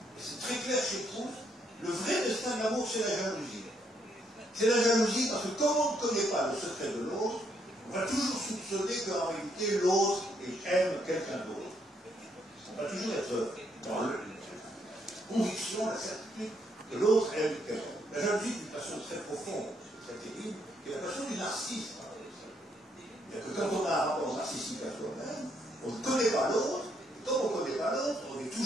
et c'est très clair chez Proust, le vrai destin de l'amour, c'est la jalousie. C'est la jalousie parce que comme on ne connaît pas le secret de l'autre, on va toujours soupçonner qu'en réalité, l'autre aime quelqu'un d'autre. On va toujours être dans la conviction, la certitude que l'autre aime quelqu'un. La jalousie est une passion très profonde, très terrible, qui est la passion du narcisse. C'est-à-dire que quand on a un rapport narcissique à soi-même, on ne connaît pas l'autre, et comme on ne connaît pas l'autre, on est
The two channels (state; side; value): normal; both; correlation 0.73